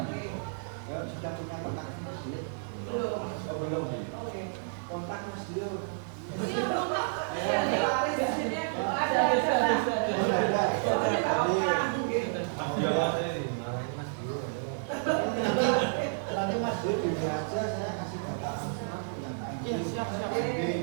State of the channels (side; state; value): left; silent; digital silence